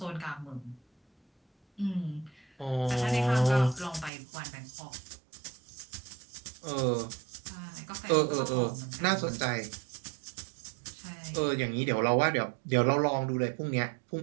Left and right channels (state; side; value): drops out; left; at 4.1 s